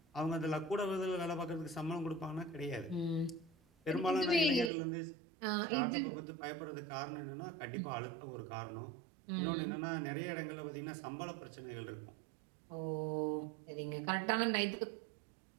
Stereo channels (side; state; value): left; drops out; at 4.7 s